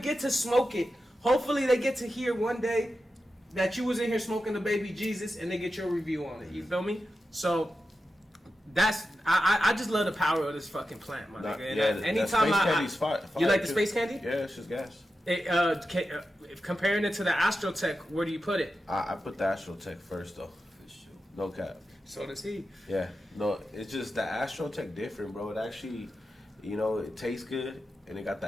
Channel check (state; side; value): normal; both; correlation 0.91